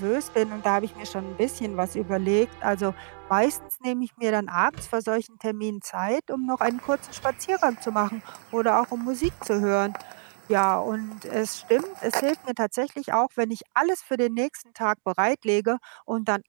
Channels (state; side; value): silent; left; 61 dB below the other